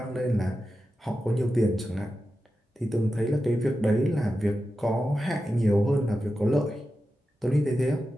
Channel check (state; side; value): normal; both; correlation 0.91